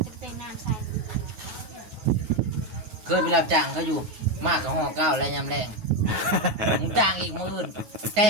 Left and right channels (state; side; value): late; left; 9.4 ms